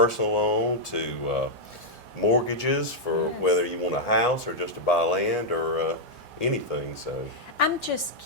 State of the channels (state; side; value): normal; both; correlation -0.04